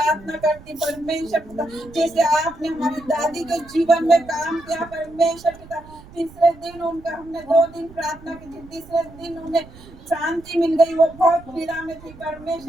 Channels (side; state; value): right; noise; rumble, 20 dB below the sound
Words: करती परमेश्वर पिता, जैसे आपने हमारी दादी के जीवन में काम किया परमेश्वर पिता, तीसरे दिन उनका हमने 2 दिन प्रार्थना की थी, तीसरे दिन उन्हें शांति मिल गई, वो बहुत पीड़ा में थी।